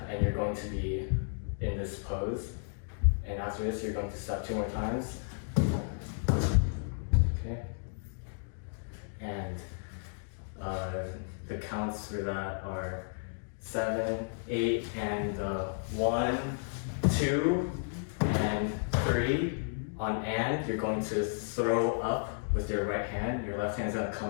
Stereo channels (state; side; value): silent; right; digital silence